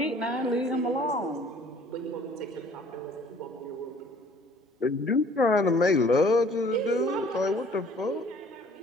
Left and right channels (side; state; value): both; normal; correlation 0.55